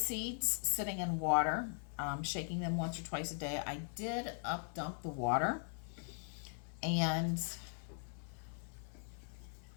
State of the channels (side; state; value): right; silent; 51 dB below the other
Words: sitting in water, shaking them once or twice a day. I did up dump the water and